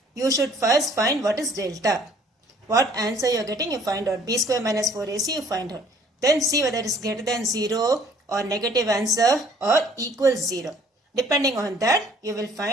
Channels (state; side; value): normal; both; correlation 0.57